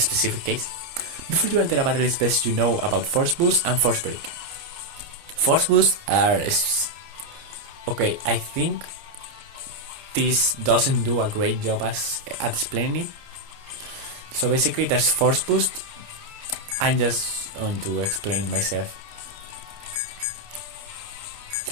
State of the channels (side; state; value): left; late; 29 ms